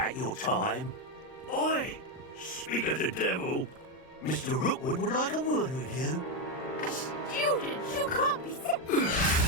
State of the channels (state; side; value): late; right; 39 ms